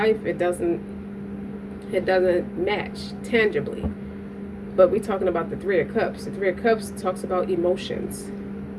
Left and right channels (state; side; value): identical; both; correlation 1.00